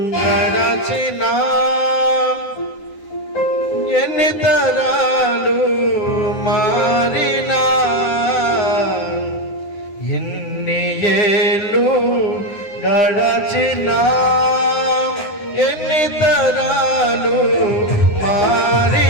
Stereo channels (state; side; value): late; right; 9.8 ms